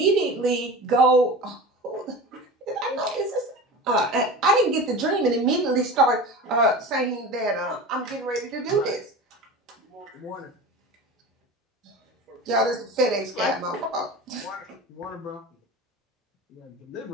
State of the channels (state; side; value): normal; both; correlation 0.32